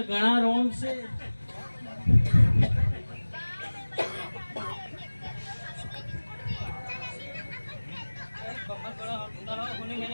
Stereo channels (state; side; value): inverted; both; correlation -1.00